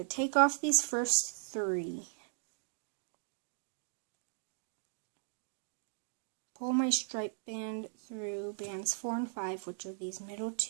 take off these first 3, pull my stripe band through bands 4 and 5, which are these middle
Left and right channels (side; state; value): left; silent; digital silence